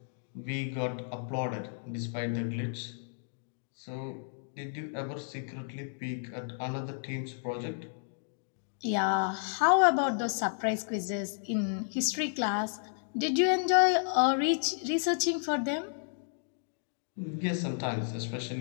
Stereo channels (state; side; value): silent; right; digital silence